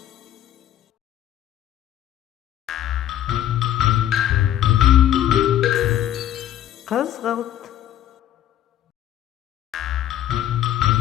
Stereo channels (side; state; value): right; quieter; 11.9 dB